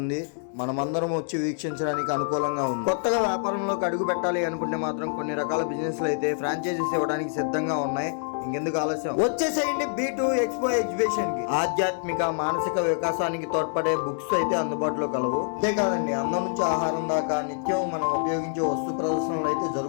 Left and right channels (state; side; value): silent; right; digital silence